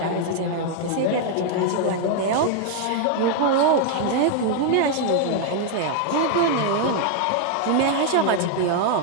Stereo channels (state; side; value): different; both; correlation 0.00